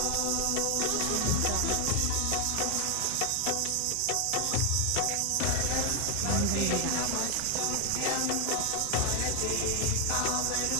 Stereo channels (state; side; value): different; both; correlation 0.00